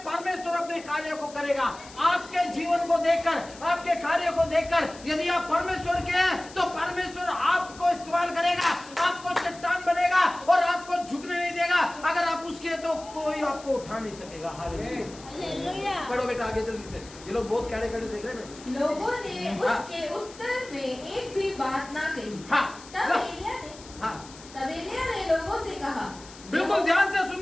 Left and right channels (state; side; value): noise; left; hiss, 19 dB below the sound